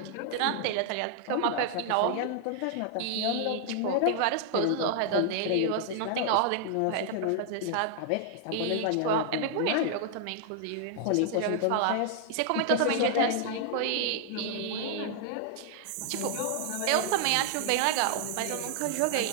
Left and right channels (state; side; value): different; both; correlation -0.01